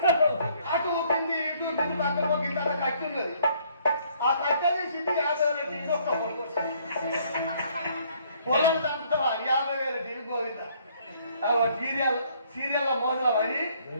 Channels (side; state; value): both; inverted; correlation -0.63